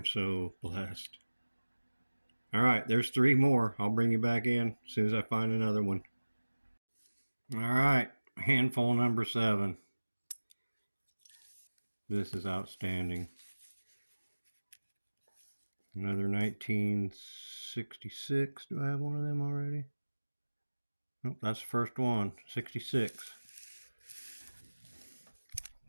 so blessed. Alright, there's 3 more. I'll bring you back in as soon as I find another one. Alright, handful number 7. This is outstanding. Another 1966. Do I have one of them already? Nope, that's the first one. 66.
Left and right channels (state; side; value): inverted; both; correlation -1.00